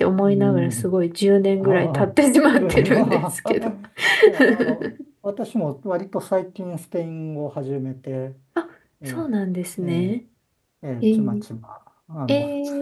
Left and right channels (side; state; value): both; identical; correlation 1.00